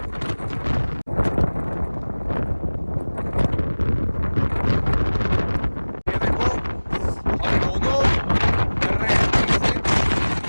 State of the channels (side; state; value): both; inverted; correlation -1.00